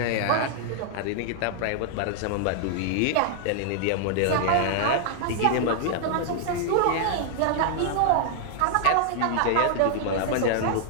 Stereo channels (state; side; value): different; both; correlation -0.01